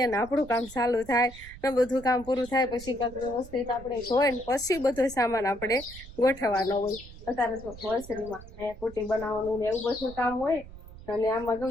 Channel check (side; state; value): right; noise; rumble, 17 dB below the sound